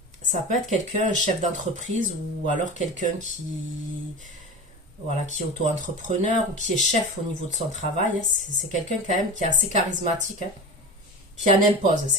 peut être quelqu'un, un chef d'entreprise, ou alors quelqu'un qui, voilà, qui est auto-entrepreneur, ou qui est chef au niveau de son travail. C'est quelqu'un quand même qui est assez charismatique, hein, qui en impose,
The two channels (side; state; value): both; normal; correlation 0.29